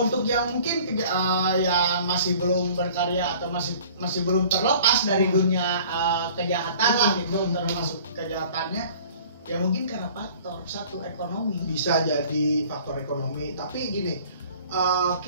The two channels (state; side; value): inverted; both; correlation -0.50